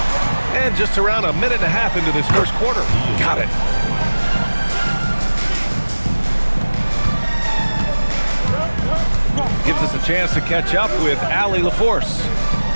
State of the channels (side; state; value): both; inverted; correlation -1.00